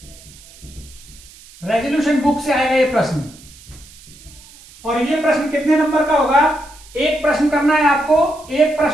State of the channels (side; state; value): right; noise; hiss, 22 dB below the sound